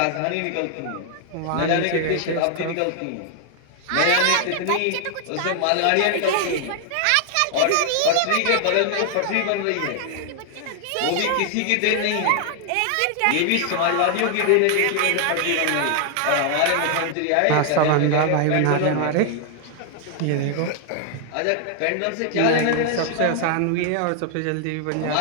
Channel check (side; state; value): both; different; correlation 0.00